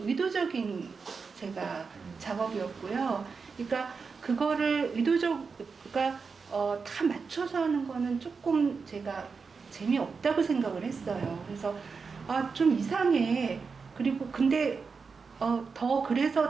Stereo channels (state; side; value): quieter; left; 5.1 dB